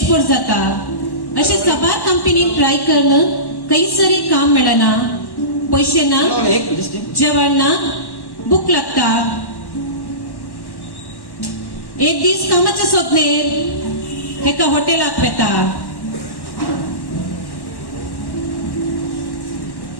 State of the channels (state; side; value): late; right; 1.1 ms